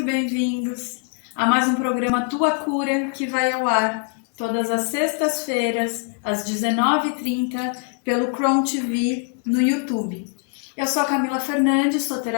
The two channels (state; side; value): quieter; right; 39.4 dB